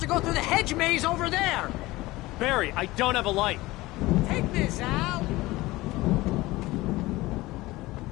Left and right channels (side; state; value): right; quieter; 19.5 dB